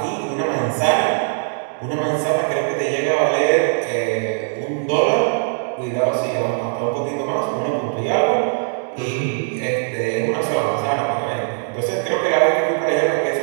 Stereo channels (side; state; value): left; silent; digital silence